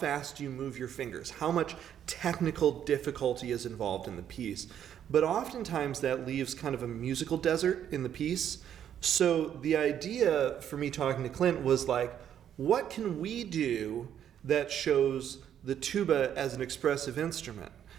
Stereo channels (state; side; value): quieter; left; 9.7 dB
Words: do you move your fingers? How much technical difficulty is involved in the piece? But oftentimes that leaves kind of a musical desert in the piece. So the idea for me talking to Clint was like, what can we do that shows the tuba as an expressive instrument?